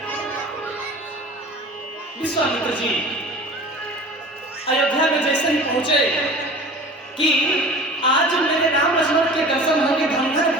विश्वामित्र जी अयोध्या में जैसे ही पहुंचे कि आज मेरे राम लक्ष्मण के दर्शन होंगे, धनधन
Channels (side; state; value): both; normal; correlation 0.40